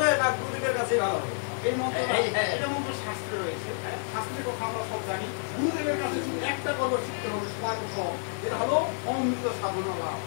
না গুরুদেবের কাছেই ভালো হবে? এই মন্ত্র এটা মন্ত্র শাস্ত্রে রয়েছে, শাস্ত্রের কথা আমরা সব জানি। গুরুদেবের কাছে শুধু একটা কর্ম শিখতে হবে সর্বপ্রথম, যেটা হলো অমৃত সাধনা লাভ।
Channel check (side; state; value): right; silent; 59 dB below the other